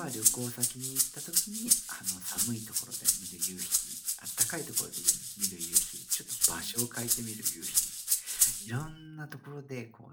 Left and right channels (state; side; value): identical; both; correlation 1.00